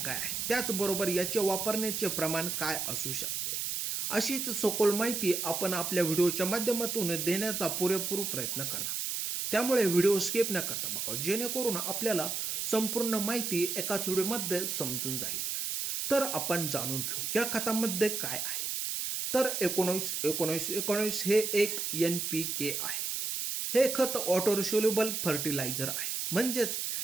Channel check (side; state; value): right; noise; hiss, 2 dB below the sound